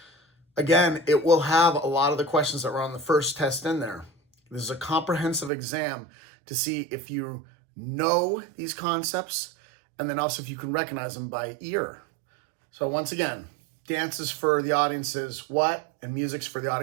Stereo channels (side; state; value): left; drops out; at 5.5 s